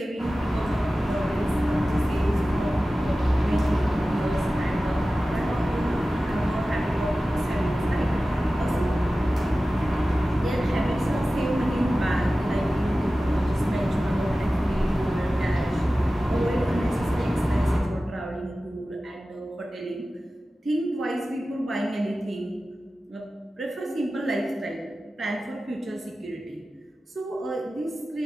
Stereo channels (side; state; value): both; normal; correlation 0.95